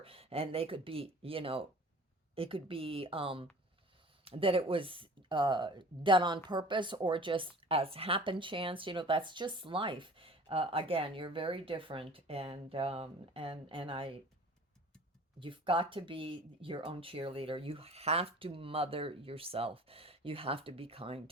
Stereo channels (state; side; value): normal; both; correlation 0.45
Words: and they could be, it could be that it was done on purpose or just as happen chance. That's just life. Again, you're very different, and you've got to be your own cheerleader. You have to mother yourself. You have to be kind